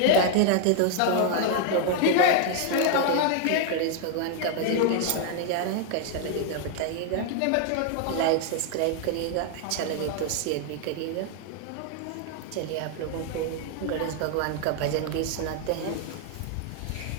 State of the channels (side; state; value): both; different; correlation 0.00